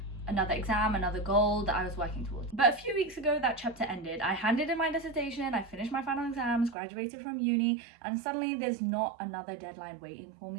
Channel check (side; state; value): left; drops out; at 6.8 s